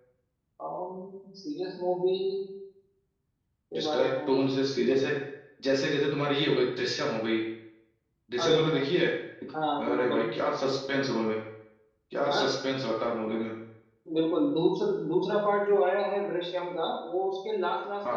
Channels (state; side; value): identical; both; correlation 1.00